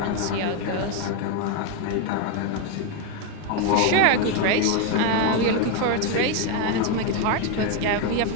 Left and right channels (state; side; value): different; both; correlation 0.01